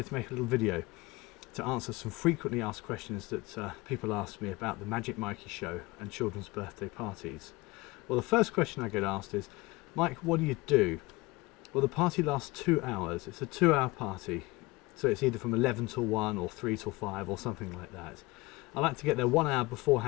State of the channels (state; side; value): quieter; right; 22.3 dB